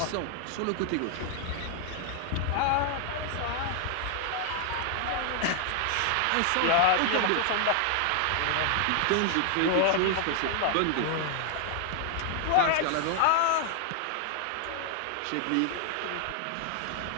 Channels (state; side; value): different; both; correlation 0.00